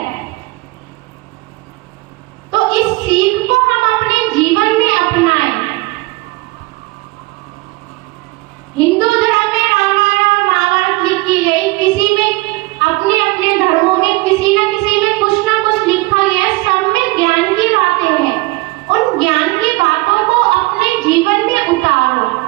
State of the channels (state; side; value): quieter; left; 22.7 dB